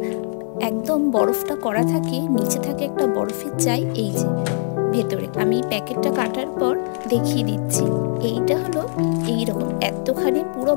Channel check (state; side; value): silent; right; 65 dB below the other